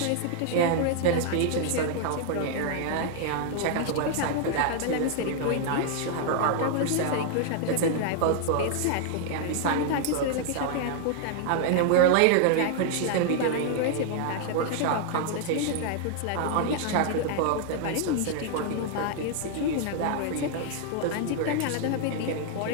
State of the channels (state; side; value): different; both; correlation 0.00